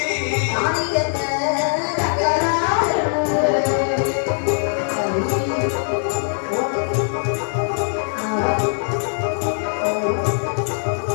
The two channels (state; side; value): silent; right; digital silence